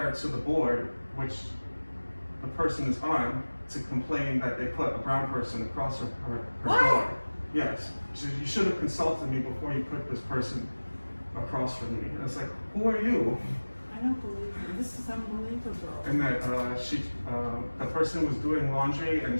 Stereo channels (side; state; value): both; inverted; correlation -1.00